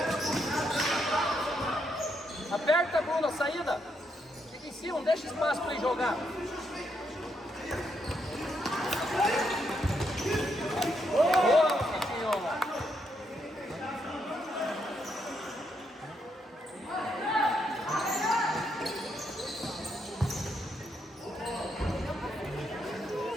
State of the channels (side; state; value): both; normal; correlation 0.78